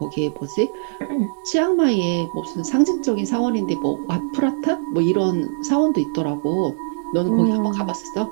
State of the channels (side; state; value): left; silent; digital silence